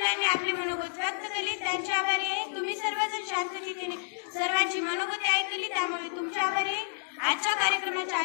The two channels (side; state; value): right; silent; digital silence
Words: आपले मनोगत व्यक्त केले, त्यांचे आभारी आहे. तुम्ही सर्वजण शांततेने सर्वांची मनोगती ऐकली, त्यामुळे तुमचे आभारी आहे. आजच्या कार्यक्रमाच्या